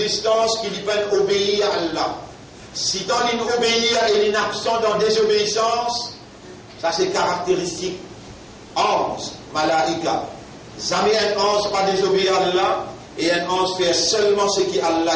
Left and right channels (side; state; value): both; identical; correlation 1.00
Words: qu'il peut obéir à Allah. Si dans l'obéir et l'inabsent dans désobéissance, ça c'est caractéristique. 11, malaïka. Jamais un 11 pas désobéir à Allah et un 11 fait seulement ce qu'Allah